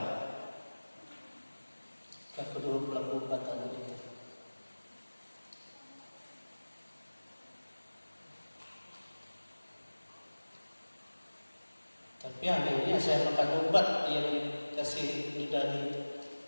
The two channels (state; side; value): inverted; both; correlation -1.00